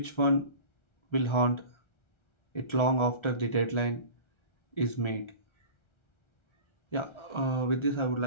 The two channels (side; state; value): right; late; 1.3 ms